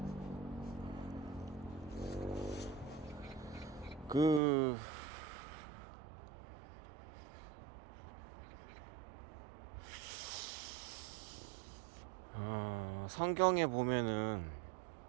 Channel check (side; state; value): left; drops out; at 4.4 s